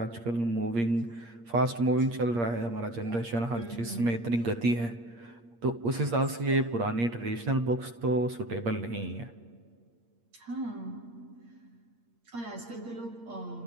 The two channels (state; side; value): late; left; 8.6 ms